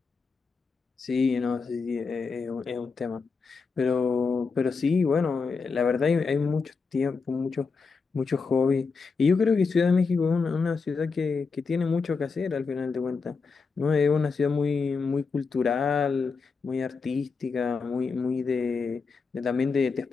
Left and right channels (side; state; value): right; quieter; 4.8 dB